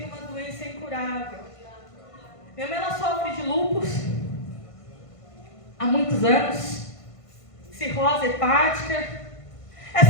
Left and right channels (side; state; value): right; late; 1.5 ms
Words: uma doença incurável. Minha mãe, ela sofre de lúpus há muitos anos, cirrose hepática.